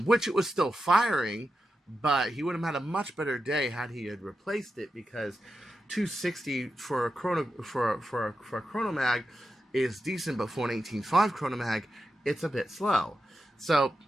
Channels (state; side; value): normal; both; correlation 0.89